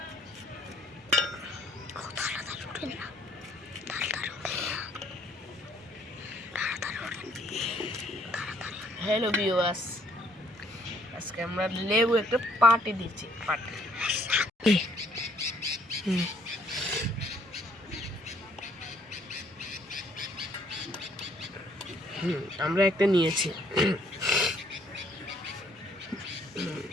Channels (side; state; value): both; normal; correlation 0.64